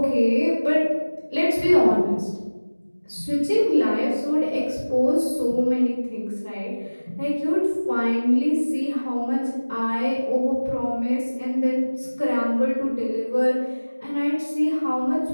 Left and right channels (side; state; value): both; inverted; correlation -1.00